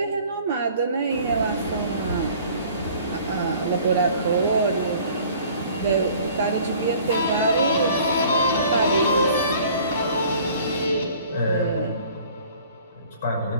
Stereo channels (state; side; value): inverted; both; correlation -0.52